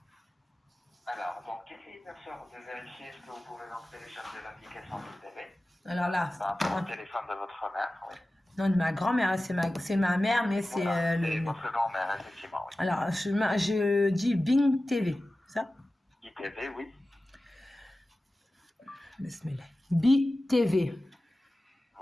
Alors, donc, essayez bien sûr de vérifier ce que vous pouvez donc télécharger l'application de TV. Alors là, Par rapport au téléphone de votre mère, oui. non, de ma grand-mère, c'est ma mère, mais c'est Voilà, c'est votre grand-mère, effectivement, oui. Alors, je dis Bing TV, ça? ITV, oui. Bismillah. BTV.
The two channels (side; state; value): both; normal; correlation 0.95